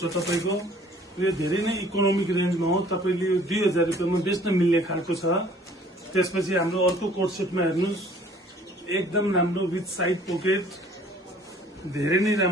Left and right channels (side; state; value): both; normal; correlation 0.55